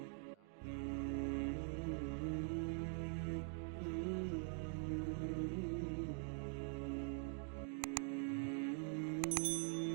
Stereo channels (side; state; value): left; quieter; 36.4 dB